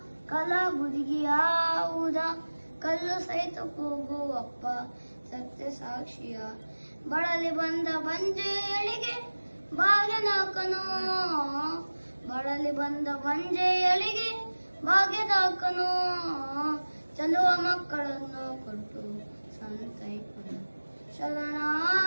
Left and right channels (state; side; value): inverted; both; correlation -1.00